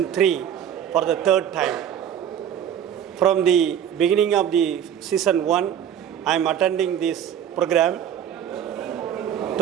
3 for the 3rd time. From the beginning of the Season 1, I am attending this program.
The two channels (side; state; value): left; quieter; 9.5 dB